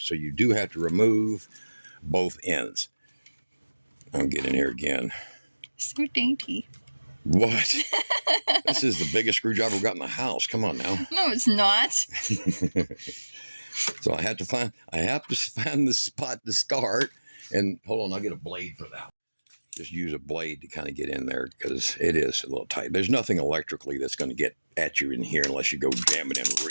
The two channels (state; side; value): inverted; both; correlation -1.00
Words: you do have to remove both ends. I'm getting in here again. So dainty. What? This is the biggest screwdriver we've got in the house. Come on now. No, it's not. So I have to find the spot to start. And hold on, I'll get a blade for that. Just use a blade to kind of get in there because it is a little tight. There's nothing electrically that's going to get at you in here unless you go jam it in